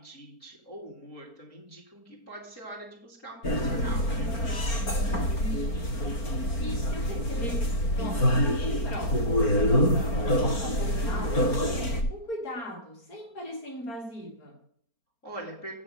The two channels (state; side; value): late; right; 4.3 ms